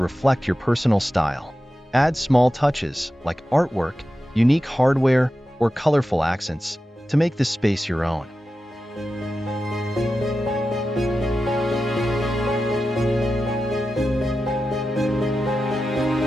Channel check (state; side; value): normal; both; correlation 0.92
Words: your personal style. Add small touches like artwork, unique hardware, or colorful accents to make the space your own.